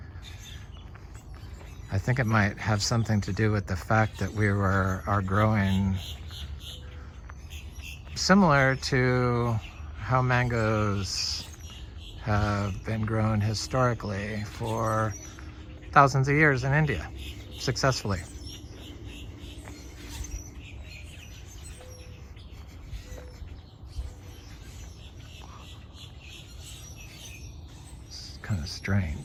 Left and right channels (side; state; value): both; identical; correlation 1.00